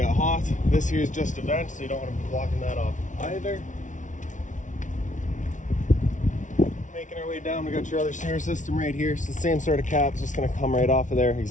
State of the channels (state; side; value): late; right; 0.37 ms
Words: hot. This here is just a vent, so you don't want to be blocking that off either. Making our way down, we got your other sewer system right here. So the same sort of cap, it's just going to come right off of there,